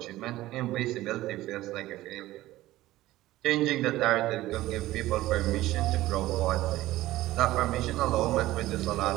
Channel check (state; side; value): quieter; left; 16.4 dB